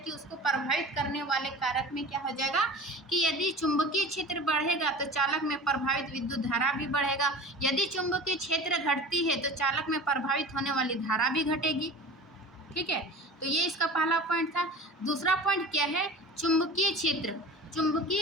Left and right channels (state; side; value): normal; both; correlation 0.37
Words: उसको प्रभावित करने वाले कारक में क्या हो जाएगा कि यदि चुंबकीय क्षेत्र बढ़ेगा तो चालक में प्रभावित विद्युत धारा भी बढ़ेगा। यदि चुंबकीय क्षेत्र घटती है तो चालक में प्रभावित होने वाली धारा भी घटेगी, ठीक है। तो ये इसका पहला पॉइंट था। दूसरा पॉइंट क्या है? चुंबकीय क्षेत्र।